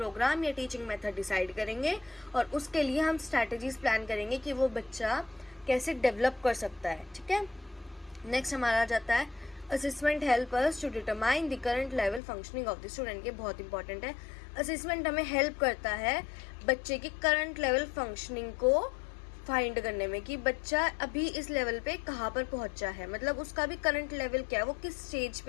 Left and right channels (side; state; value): right; drops out; at 12.2 s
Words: या टीचिंग मेथड डिसाइड करेंगे और उसके लिए हम स्ट्रैटेजीज प्लान करेंगे कि वो बच्चा कैसे डेवलप कर सकता है। ठीक है, नेक्स्ट हमारा आ जाता है assessment help us to determine the current level functioning of the student. ये बहुत इंपॉर्टेंट है। असेसमेंट हमें हेल्प करता है बच्चे की करंट लेवल फंक्शनिंग को फाइंड करने में कि बच्चा अभी इस लेवल पे कहाँ पर पहुंचा है, मतलब उसका भी करंट लेवल क्या है, वो किस स्टेज